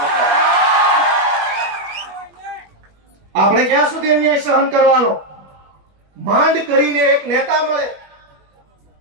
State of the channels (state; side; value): late; left; 21 ms